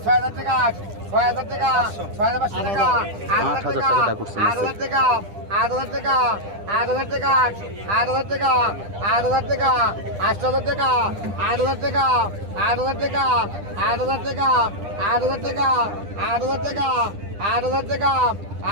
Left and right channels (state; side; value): late; left; 10 ms